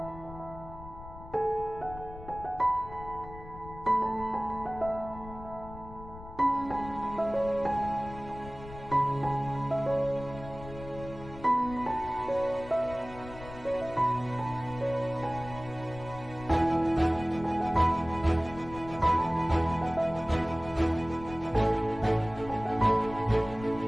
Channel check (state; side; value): noise; left; rumble, 15 dB below the sound